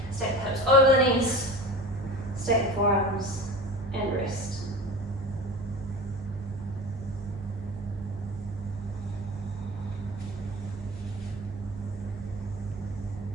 stack the hips over the knees, stack the forearms, and rest.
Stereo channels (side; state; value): both; normal; correlation 0.34